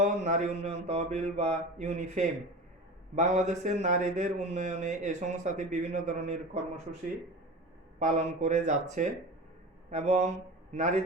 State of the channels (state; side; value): normal; both; correlation 0.31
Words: নারী উন্নয়ন তহবিল বা ইউনিফেম বাংলাদেশের নারীদের উন্নয়নে এই সংস্থাটি বিভিন্ন ধরনের কর্মসূচি পালন করে যাচ্ছে, এবং